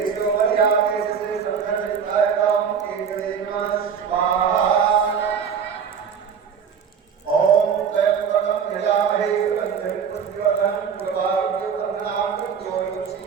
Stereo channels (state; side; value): quieter; left; 7.0 dB